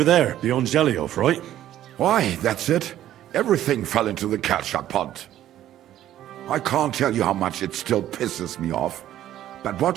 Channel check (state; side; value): quieter; left; 12.5 dB